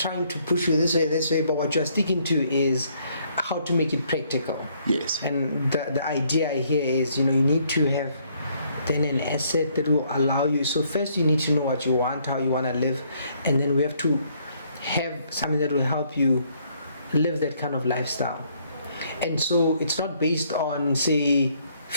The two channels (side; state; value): both; inverted; correlation -0.67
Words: to push you this way, but what you're sticking to is how to make it practical. Yes. And the idea here is, you need to have then an asset that will allow you. So first you need to know what you want, how you want to live, and then we have to have something that will help you live that kind of lifestyle. And so it's not based on, say,